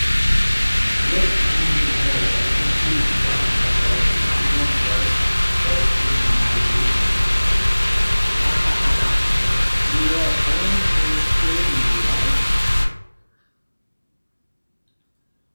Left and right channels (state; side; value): inverted; both; correlation -1.00